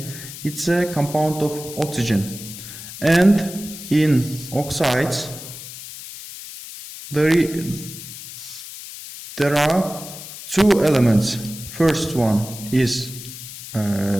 it's a compound of oxygen. And in oxides, there are two elements. First one is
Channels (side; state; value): left; noise; hiss, 12 dB below the sound